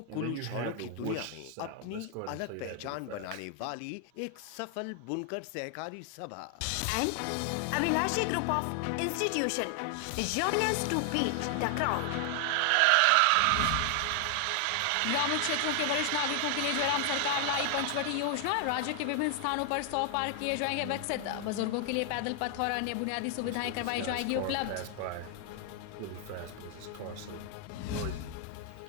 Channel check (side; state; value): both; different; correlation 0.00